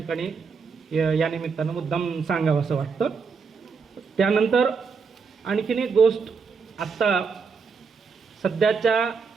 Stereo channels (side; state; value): left; quieter; 5.4 dB